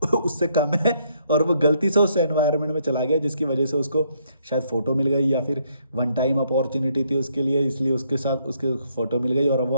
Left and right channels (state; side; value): inverted; both; correlation -0.71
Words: उससे कम है, और वो गलती से उस एनवायरनमेंट में चला गया जिसकी वजह से उसको शायद फ़ोटो मिल गई, या फिर वन टाइम अपॉर्चुनिटी थी उसके लिए, इसलिए उसके साथ उसके फ़ोटो मिल गई और वो